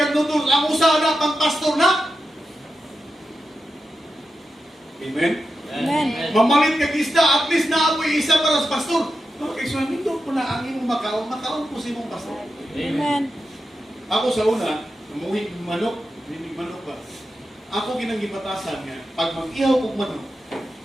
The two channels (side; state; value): both; normal; correlation 0.89